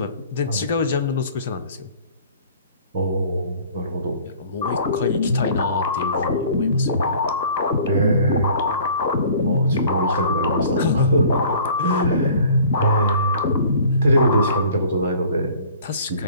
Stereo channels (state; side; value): inverted; both; correlation -0.50